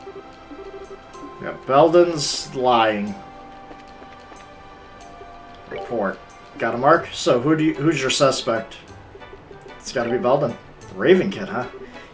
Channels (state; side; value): identical; both; correlation 1.00